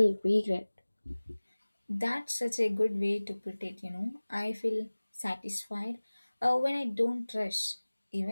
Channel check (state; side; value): inverted; both; correlation -1.00